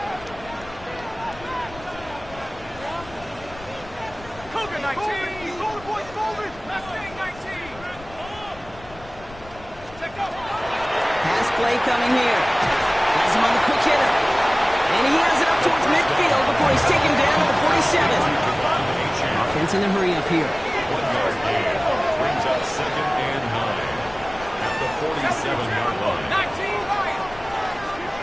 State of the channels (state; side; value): noise; left; rumble, 19 dB below the sound